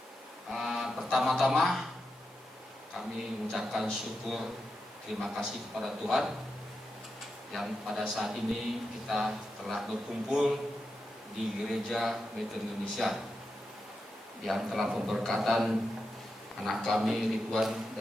Pertama-tama kami mengucapkan syukur, terima kasih kepada Tuhan yang pada saat ini kita telah berkumpul di Gereja Metro Indonesia, yang telah memberkatan anak kami Ridwan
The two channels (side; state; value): both; normal; correlation 0.88